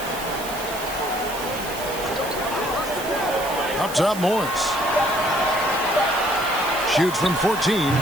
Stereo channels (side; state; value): right; noise; hiss, 11 dB below the sound